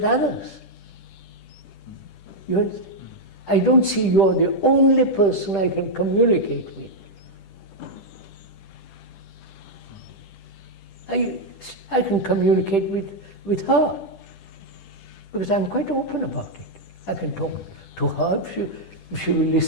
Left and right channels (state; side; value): late; right; 10 ms